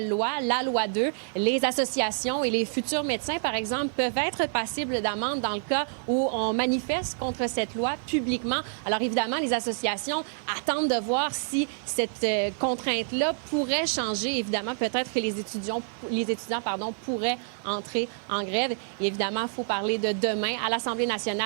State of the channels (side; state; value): left; silent; 58 dB below the other